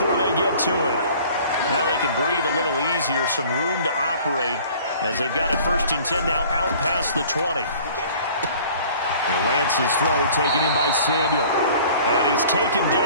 they get to it. Now they can breathe a little easier, some room to operate as they've got it first and 10 now out past the 20. And Lance's throw taken in by Samuel. And he's taken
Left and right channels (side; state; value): both; inverted; correlation -0.50